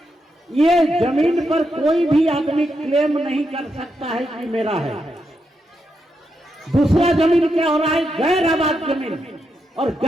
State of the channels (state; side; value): normal; both; correlation 0.83